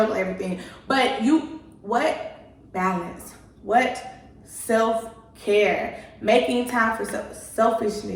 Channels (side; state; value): both; identical; correlation 1.00